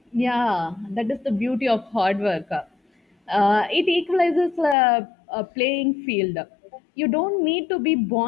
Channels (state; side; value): drops out; right; at 4.8 s